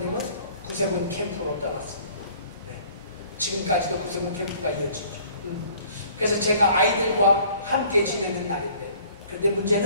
구세군 캠프로 떠났습니다. 네. 지금까지도 구세군 캠프가 이어지죠. 그래서 제가 아이들과 함께 지내는 날인데, 그런데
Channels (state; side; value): inverted; both; correlation -0.54